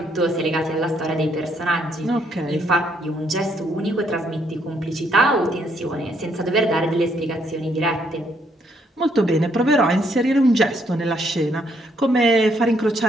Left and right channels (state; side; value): normal; both; correlation 0.71